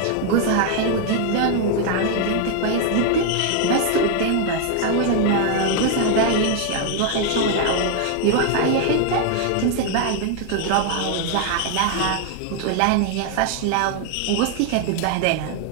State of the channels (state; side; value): different; both; correlation 0.00